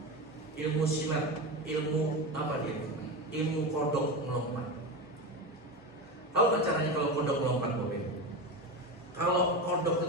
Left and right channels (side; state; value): both; normal; correlation 0.21